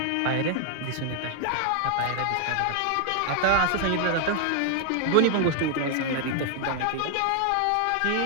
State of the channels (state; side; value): different; both; correlation 0.00